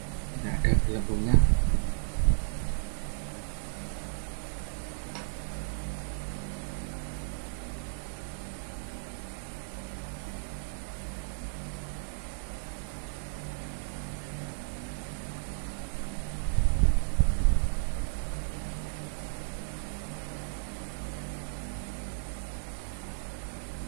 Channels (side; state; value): left; silent; digital silence